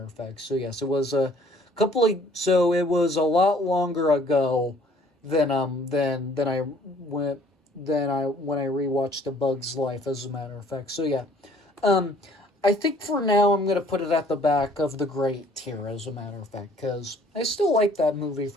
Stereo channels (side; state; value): both; normal; correlation 0.58